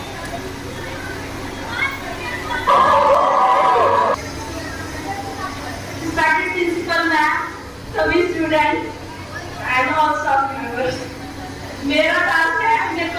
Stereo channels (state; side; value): identical; both; correlation 1.00